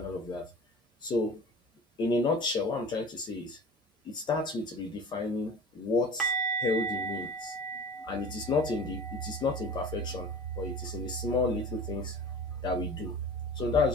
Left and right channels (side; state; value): both; normal; correlation 0.38